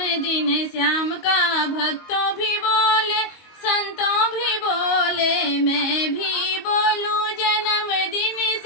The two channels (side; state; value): right; late; 22 ms